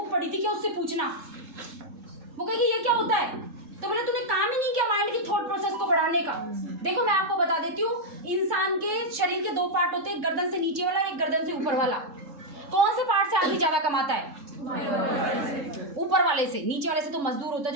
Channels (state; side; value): late; left; 3.7 ms